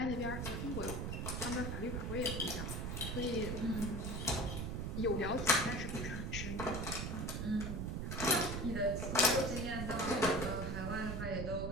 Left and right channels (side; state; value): right; noise; rumble, 2 dB below the sound